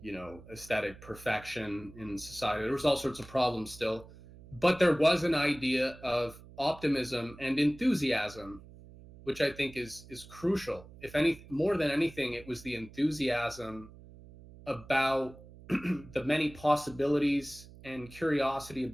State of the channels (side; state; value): right; noise; hum, 19 dB below the sound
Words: aesthetic perfection in society. There was all sorts of problems still, but there was an idea of optimism and enthusiasm, which I think is crucial. If any more than anything, it was the enthusiasm about the many possibilities and curiosity